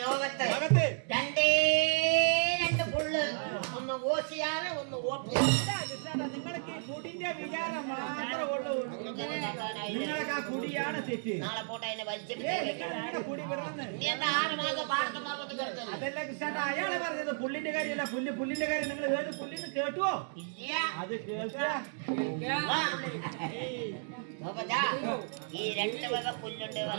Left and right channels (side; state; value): left; silent; digital silence